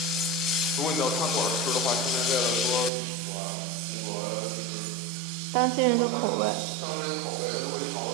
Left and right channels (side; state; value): left; drops out; at 2.9 s